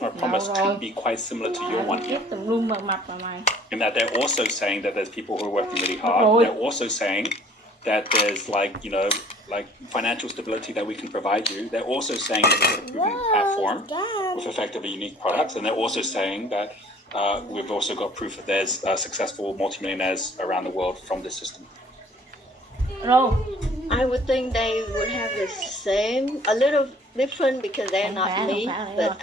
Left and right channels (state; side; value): normal; both; correlation 0.54